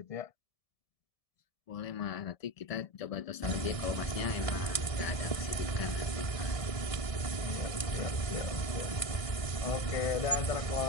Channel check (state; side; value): late; right; 1.7 ms